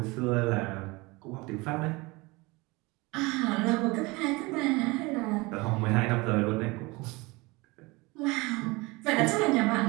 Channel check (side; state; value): left; quieter; 24.1 dB